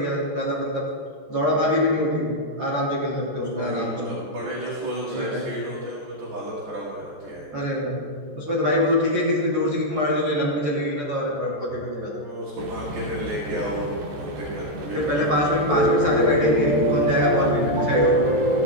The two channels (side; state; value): left; late; 14 ms